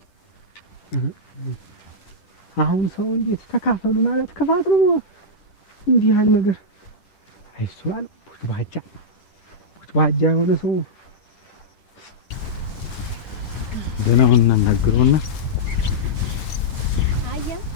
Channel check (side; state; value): right; late; 10 ms